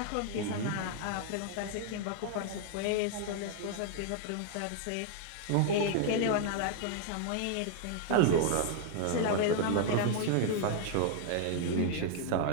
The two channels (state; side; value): different; both; correlation 0.00